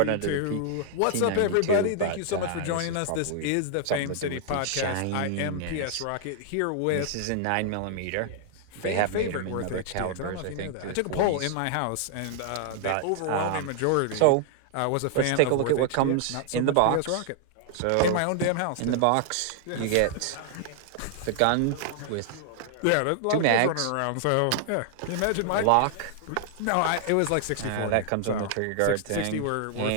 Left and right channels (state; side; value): different; both; correlation -0.01